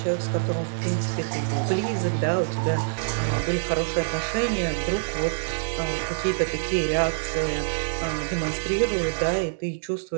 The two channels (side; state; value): left; silent; digital silence